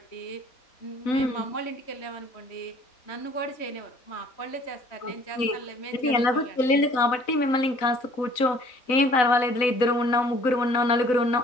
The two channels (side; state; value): right; late; 4.0 ms